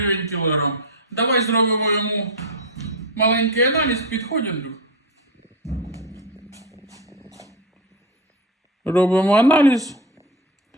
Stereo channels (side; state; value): both; normal; correlation 0.15